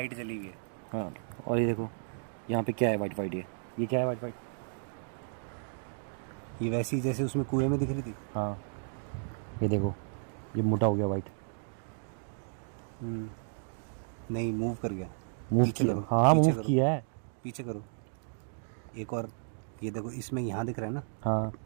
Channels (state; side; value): silent; left; digital silence